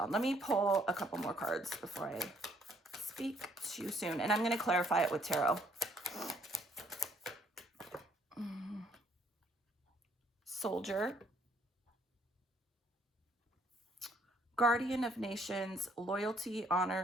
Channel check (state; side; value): normal; both; correlation 0.65